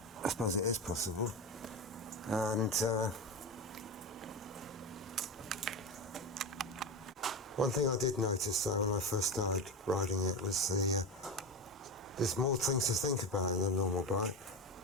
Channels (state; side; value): normal; both; correlation 0.21